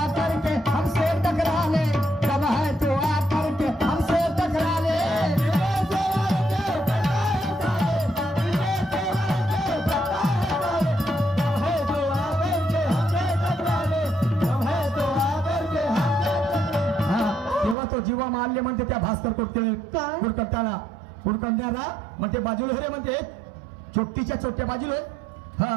जीवा मारले म्हणते त्या भास्कर कुडकट्याला कुडकट्याला म्हणते बाजूला रे म्हणते चोट्टीच्या चोट्या बाजूला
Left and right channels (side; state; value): left; drops out; at 17.8 s